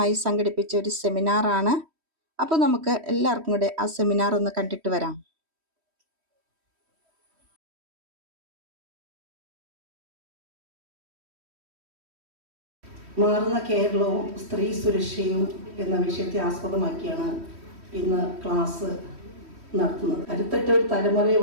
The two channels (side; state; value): left; late; 3.1 ms